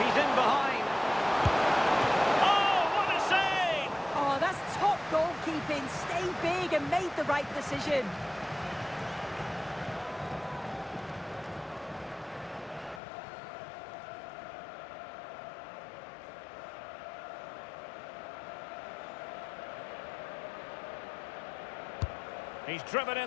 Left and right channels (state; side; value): drops out; right; at 13.0 s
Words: right decision. He's driven